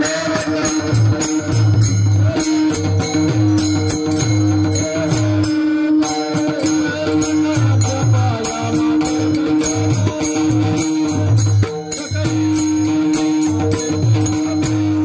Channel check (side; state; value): both; identical; correlation 1.00